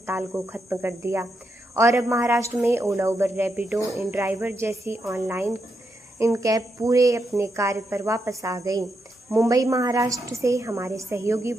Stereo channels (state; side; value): normal; both; correlation 0.83